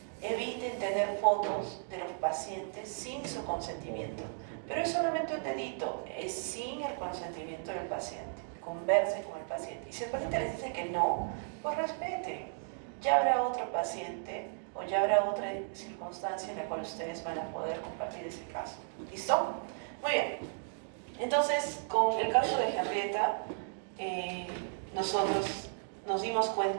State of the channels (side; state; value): left; silent; digital silence